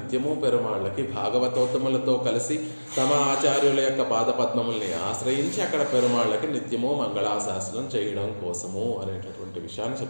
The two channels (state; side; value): inverted; both; correlation -1.00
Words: పెరుమాళ్ళకి భాగవతోత్తములతో కలిసి తమ ఆచార్యుల యొక్క పాదపద్మముల్ని ఆశ్రయించి అక్కడ పెరుమాళ్ళకి నిత్యము మంగళాశాసనం చేయడం కోసము అనేటటువంటి విషయాన్ని